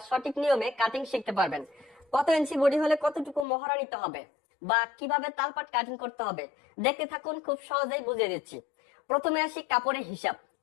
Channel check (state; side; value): drops out; right; at 3.5 s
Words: সঠিক নিয়মে কাটিং শিখতে পারবেন। কত ইঞ্চি বডি হলে কতটুকু মহড়া নিতে হবে বা কিভাবে তালপাট কাটিং করতে হবে দেখতে থাকুন, খুব সহজেই বুঝিয়ে দিচ্ছি। প্রথমে আসি কাপড়ের হিসাব।